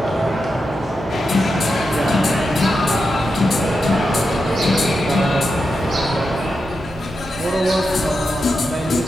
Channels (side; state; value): both; normal; correlation 0.88